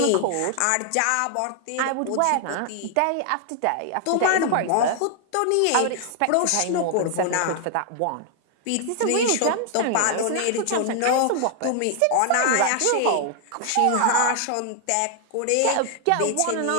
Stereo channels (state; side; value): different; both; correlation 0.00